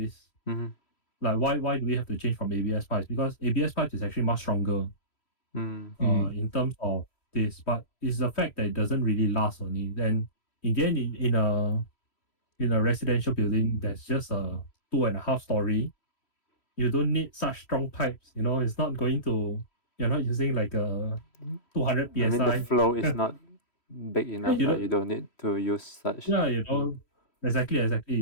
Like why do we have to change from ABS pipes? Because ABS pipes is actually much stronger in terms of this, but it's the fact that it doesn't really last only. Then in the end, in a residential building that's just a 2.5 story, you don't need such strong pipes. It's not going to. You're not using like a 200 psi. I mean, the flow is not big enough. you Like don't, you don't need to use such. yeah,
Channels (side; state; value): right; late; 3.1 ms